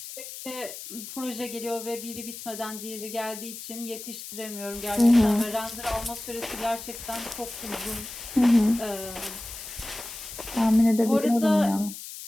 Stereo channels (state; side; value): noise; left; hiss, 11 dB below the sound